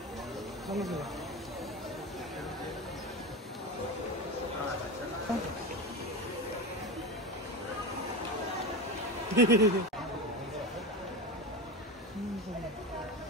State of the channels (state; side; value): normal; both; correlation 0.23